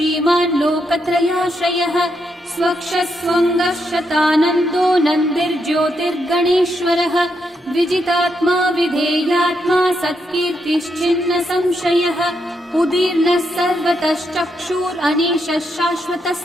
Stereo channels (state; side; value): normal; both; correlation 0.80